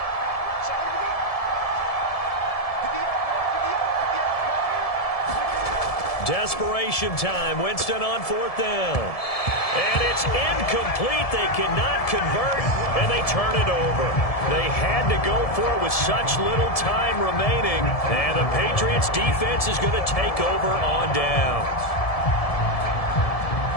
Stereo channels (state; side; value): late; right; 1.7 ms